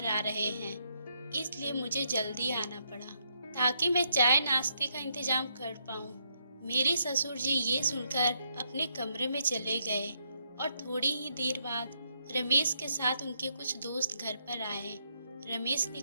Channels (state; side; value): inverted; both; correlation -0.76